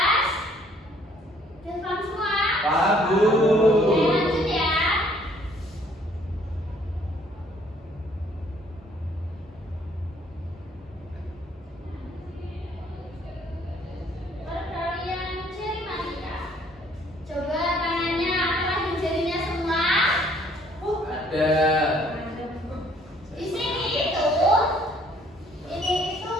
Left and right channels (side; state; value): both; normal; correlation 0.62